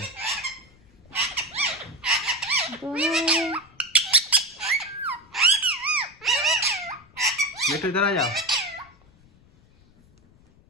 मिठू इधर आ जाओ,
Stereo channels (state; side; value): noise; left; rumble, 28 dB below the sound